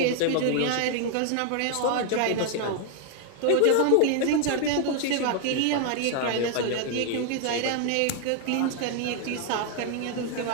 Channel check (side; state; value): both; different; correlation 0.00